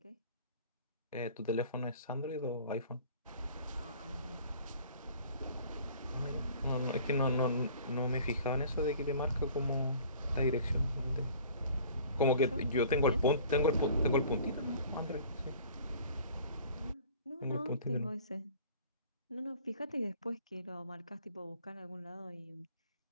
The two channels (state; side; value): inverted; both; correlation -0.49